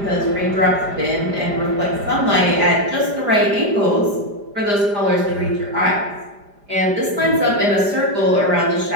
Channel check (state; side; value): late; left; 5.0 ms